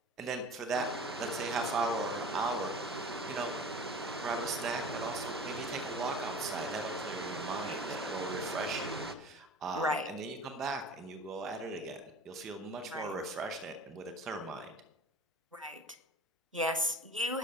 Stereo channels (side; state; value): both; normal; correlation 0.41